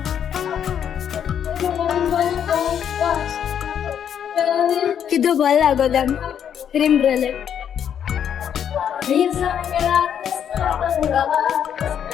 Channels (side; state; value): right; quieter; 8.8 dB